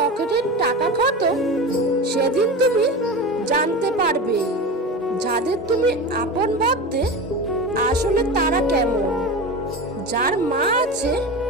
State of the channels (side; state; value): both; normal; correlation 0.27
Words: টাকা খতম, সেদিন তুমি জানতে পারবে যাদের তুমি আপন ভাবতে আসলে তারা কেমন। যার মা আছে